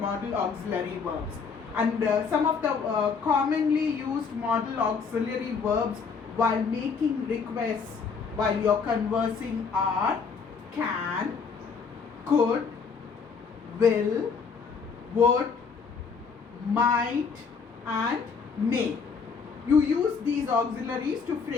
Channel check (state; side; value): quieter; right; 5.5 dB